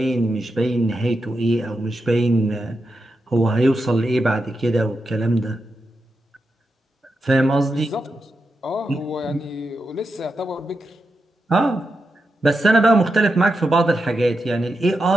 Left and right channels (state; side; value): normal; both; correlation 0.87